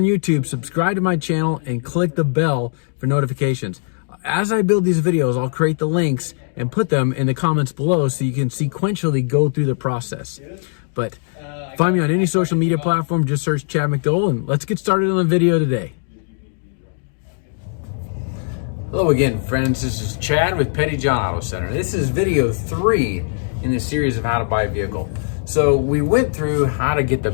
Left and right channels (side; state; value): right; silent; digital silence